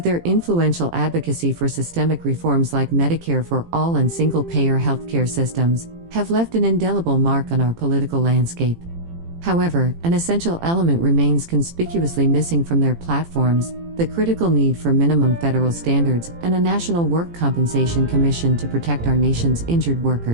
their influential advocacy for systemic reforms like Medicare for all and single-payer healthcare systems, have left an indelible mark on our political landscape. However, an essential element remains conspicuously missing from their platforms: the critical need for minimum federal standards and a National Work Compensation Commission to protect our nation's injured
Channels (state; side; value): late; left; 18 ms